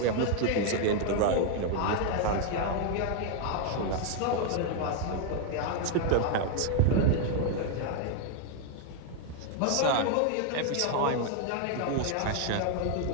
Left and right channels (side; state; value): both; different; correlation 0.00